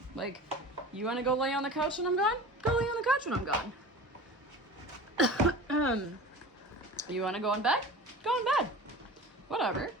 Like, you want to go lay on the couch when I'm gone? Go lay on the couch when I'm gone. You want to go in bed? Go in bed. Whatever.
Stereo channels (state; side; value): normal; both; correlation 0.37